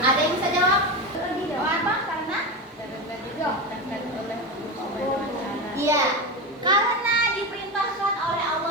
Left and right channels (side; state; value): both; normal; correlation 0.19